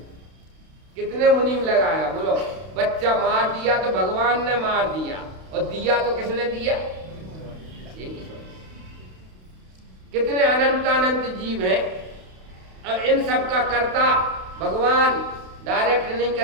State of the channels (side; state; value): left; late; 32 ms